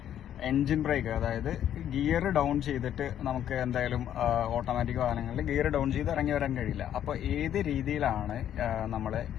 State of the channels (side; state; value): right; quieter; 10.5 dB